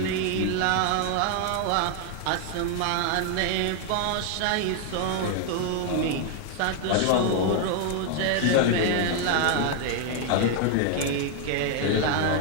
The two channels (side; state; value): both; different; correlation 0.00